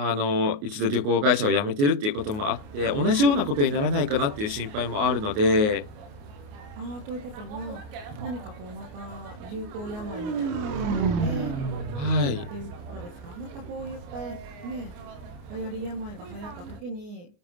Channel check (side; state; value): left; late; 29 ms